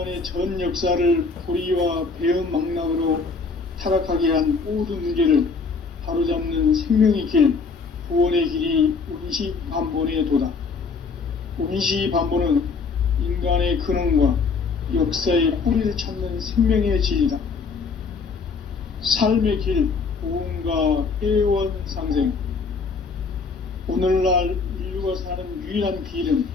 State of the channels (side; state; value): right; quieter; 4.7 dB